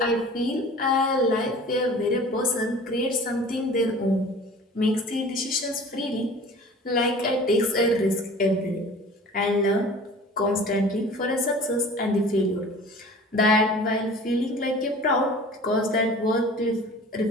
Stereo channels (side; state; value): both; normal; correlation 0.43